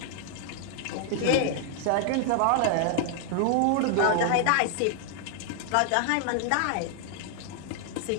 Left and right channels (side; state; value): both; different; correlation 0.00